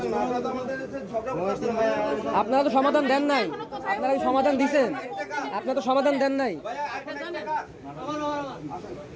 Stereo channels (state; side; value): identical; both; correlation 1.00